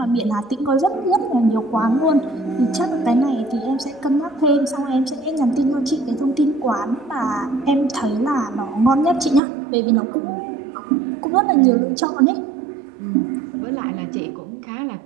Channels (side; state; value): left; drops out; at 9.4 s